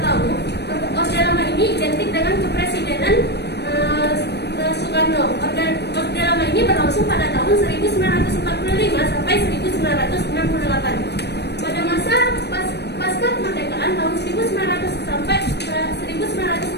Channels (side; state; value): right; late; 0.49 ms